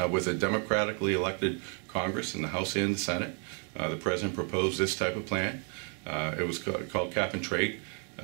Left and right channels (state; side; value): quieter; left; 39.7 dB